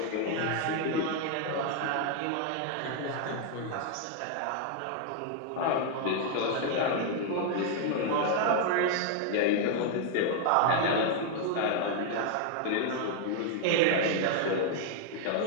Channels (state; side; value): different; both; correlation 0.00